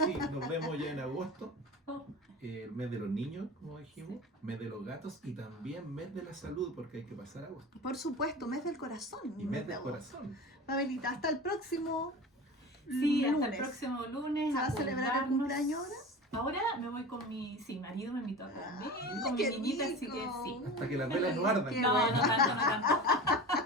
Sí, nos vemos ya en agosto. Oh, Mes de los niños, como dijimos, mes de los gatos, y también mes de la salud, porque hay que pasar agosto. Por supuesto, mes del corazón. Y mes de del agosto. corazón. Pavelita, hasta el próximo sí, hasta lunes. el próximo lunes. ¿Se va a celebrar el acordarnos. cumpleaños ahora? Ahora me voy con mi marido, me invitó a comer, con mi qué niñita, así rico. que sí. Hasta que las velas no ardan. Qué No, bueno. no tanto, no tanto.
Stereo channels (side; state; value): both; normal; correlation 0.32